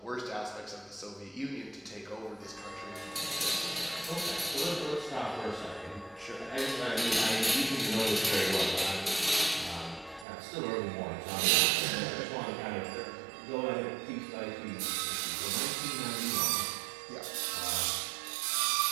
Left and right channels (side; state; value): left; drops out; at 10.2 s